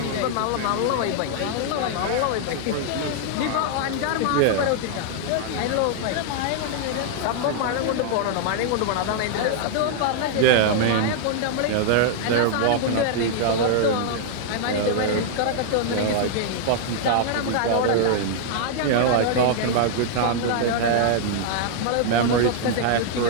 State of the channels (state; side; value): different; both; correlation -0.01